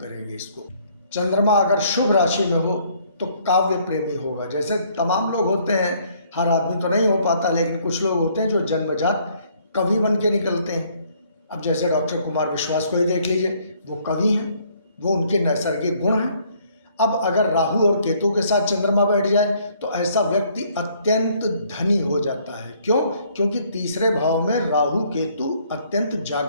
इसको। चंद्रमा अगर शुभ राशि में हो तो काव्य प्रेमी होगा। जैसे तमाम लोग होते हैं, हर आदमी तो नहीं हो पाता, लेकिन कुछ लोग होते हैं जो जन्मजात कवि बन के निकलते हैं। अब जैसे डॉक्टर कुमार विश्वास को ही देख लीजिए, वो कवि हैं, वो उनके नैसर्गिक गुण हैं। अब अगर राहु और केतु के साथ चंद्रमा बैठ जाए तो ऐसा व्यक्ति अत्यंत धनी हो जाता है। क्यों? क्योंकि तीसरे भाव में राहु केतु अत्यंत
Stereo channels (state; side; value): inverted; both; correlation -0.64